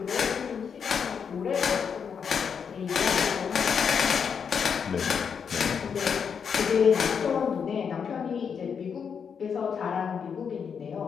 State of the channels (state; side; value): quieter; right; 6.8 dB